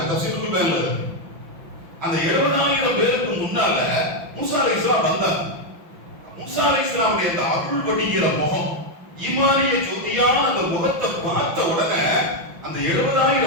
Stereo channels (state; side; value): late; left; 5.9 ms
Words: தஃசீருல் பயான்ல. அந்த 70,000 பேருக்கு முன்னால மூசா அலைஹிஸ்ஸலாம் வந்தாங்க. மூசா அலைஹிஸ்ஸலாமுடைய அந்த அருள் வடிகிற முகம், ஈமானிய ஜோதியான அந்த முகத்தை பார்த்த உடனே அந்த